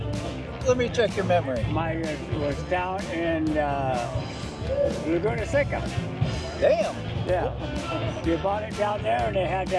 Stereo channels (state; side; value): identical; both; correlation 1.00